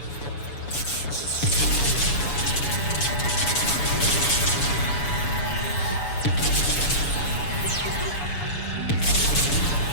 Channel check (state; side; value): late; right; 7.1 ms